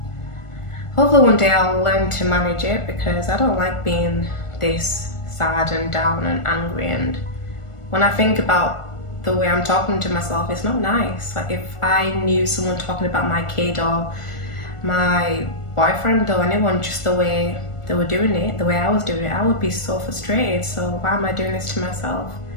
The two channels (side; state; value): right; late; 1.4 ms